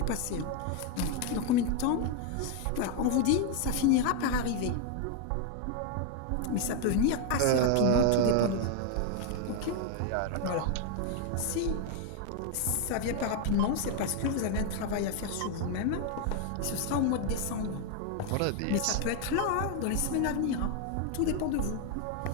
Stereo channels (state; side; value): different; both; correlation 0.01